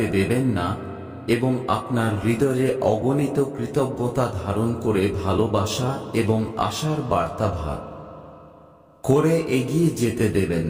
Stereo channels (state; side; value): identical; both; correlation 1.00